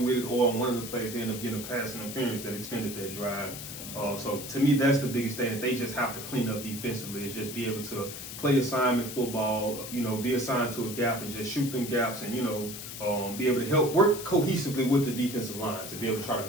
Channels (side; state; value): left; noise; hiss, 9 dB below the sound